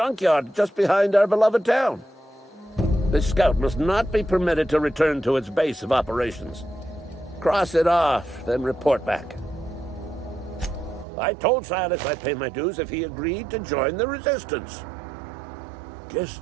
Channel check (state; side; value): drops out; left; at 11.1 s